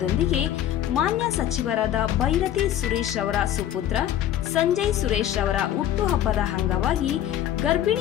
ಮಾನ್ಯ ಸಚಿವರಾದ ಭೈರತಿ ಸುರೇಶ್ ಅವರ ಸುಪುತ್ರ ಸಂಜಯ್ ಸುರೇಶ್ ಅವರ ಹುಟ್ಟುಹಬ್ಬದ ಅಂಗವಾಗಿ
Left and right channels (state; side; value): quieter; right; 11.5 dB